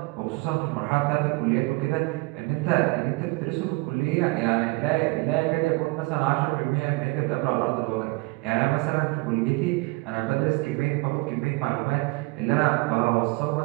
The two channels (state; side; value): quieter; left; 24.8 dB